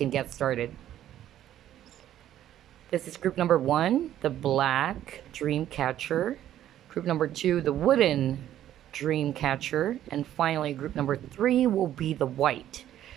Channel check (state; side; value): quieter; left; 11.9 dB